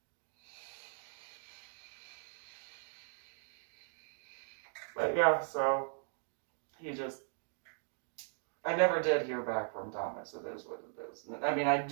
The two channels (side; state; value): left; silent; 52 dB below the other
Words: But yeah, so he just, I never did hear back from Thomas. It is what it is. I mean, I